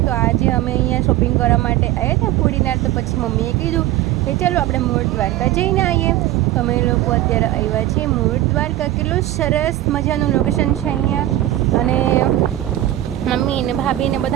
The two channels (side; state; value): left; quieter; 14.4 dB